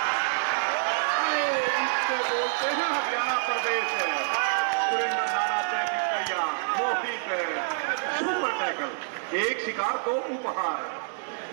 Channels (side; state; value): left; silent; digital silence